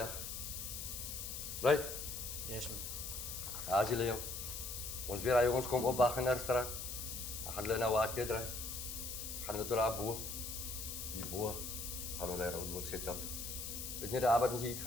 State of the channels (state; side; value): noise; left; hiss, 6 dB below the sound